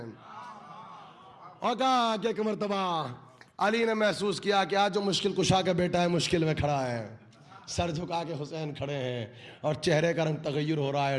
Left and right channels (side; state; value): both; identical; correlation 1.00